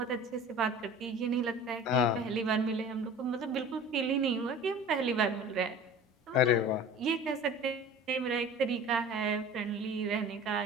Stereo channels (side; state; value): both; normal; correlation 0.41